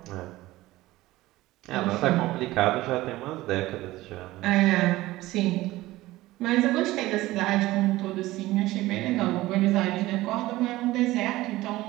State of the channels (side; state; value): left; quieter; 17.7 dB